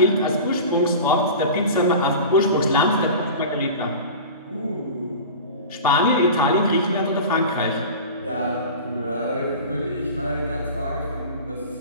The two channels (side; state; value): both; inverted; correlation -0.34